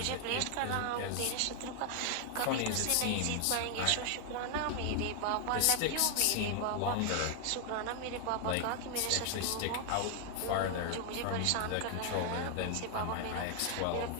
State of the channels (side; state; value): both; different; correlation 0.00